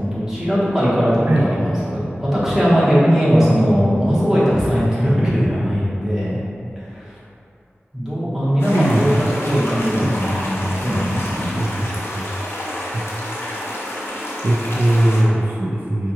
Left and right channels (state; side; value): normal; both; correlation 0.96